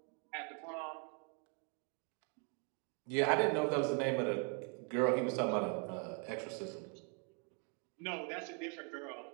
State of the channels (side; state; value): left; quieter; 38.1 dB